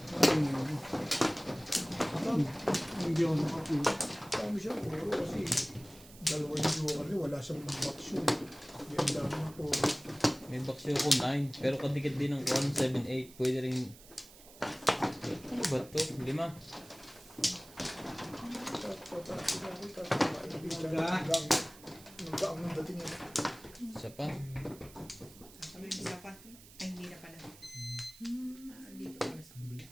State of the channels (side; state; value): right; noise; hiss, 20 dB below the sound